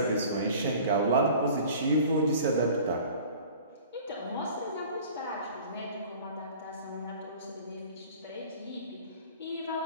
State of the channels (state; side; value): inverted; both; correlation -0.45